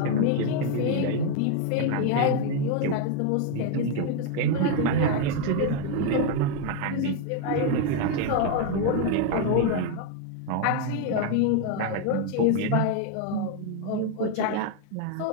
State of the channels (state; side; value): different; both; correlation 0.01